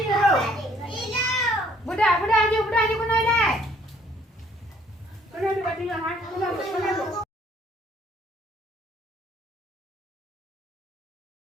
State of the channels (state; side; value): normal; both; correlation 0.61